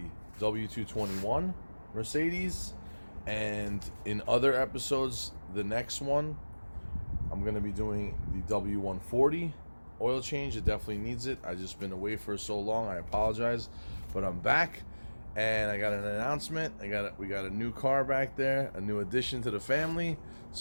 W221 Mercedes. And in other episodes, the next one, I'm going to be doing the W140 oil change. It definitely needs it. I've just been away for so long. I apologize, but I'm back. And I got an announcement. We got a new car back there, a new addition to the family.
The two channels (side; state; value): both; inverted; correlation -1.00